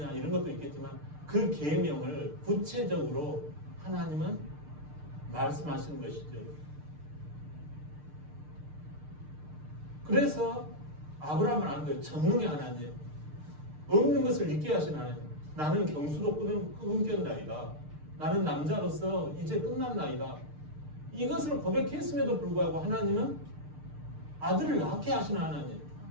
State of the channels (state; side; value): late; left; 6.6 ms